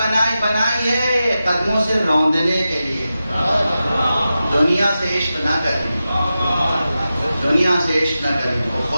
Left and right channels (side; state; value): both; inverted; correlation -0.92